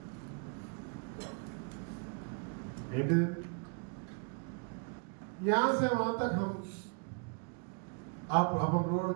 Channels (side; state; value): left; quieter; 38.3 dB